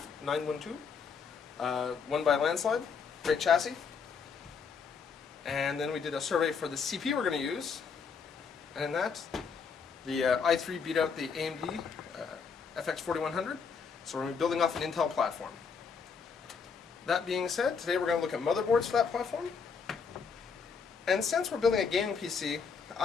912, won by a landslide. Great chassis. And then we did a survey for the CPU we're going to use, and in that, the i3 beat out the AMD FX 4100, so we're going to be building off an Intel platform. That being said, today we're going to look at motherboards for that platform. And since we're building a gaming PC,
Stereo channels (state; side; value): quieter; right; 5.8 dB